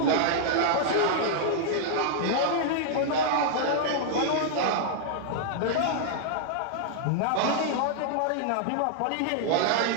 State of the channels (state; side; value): different; both; correlation -0.01